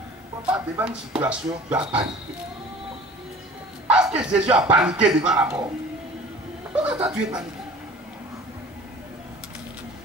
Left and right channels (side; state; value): both; normal; correlation 0.44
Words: Pas devant une situation, tu as paniqué. Est-ce que Jésus a paniqué devant la mort? Pourquoi toi tu es paniqué?